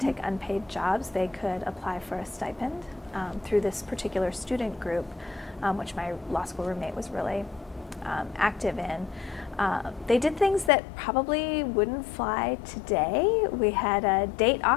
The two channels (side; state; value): right; drops out; at 10.7 s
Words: unpaid jobs. They could apply for a stipend through this particular student group, which my law school roommate was really active in. They did things that probably wouldn't fly today. We had a